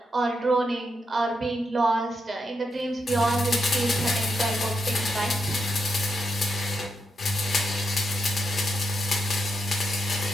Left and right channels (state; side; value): normal; both; correlation 0.83